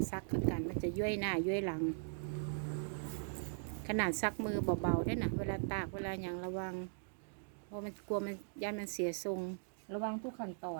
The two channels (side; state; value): left; silent; digital silence